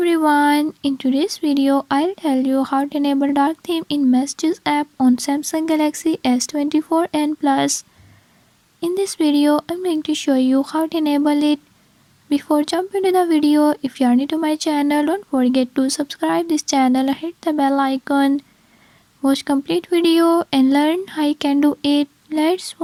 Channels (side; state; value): both; identical; correlation 1.00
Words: everyone, in today's video I'll tell you how to enable dark theme in Messages app on Samsung Galaxy S24 and Plus. In this video I'm going to show you how to enable it. Before jumping to the video, if you are new to my channel, don't forget to subscribe this channel and hit the bell icon. Watch complete video and learn how you can do it. Let's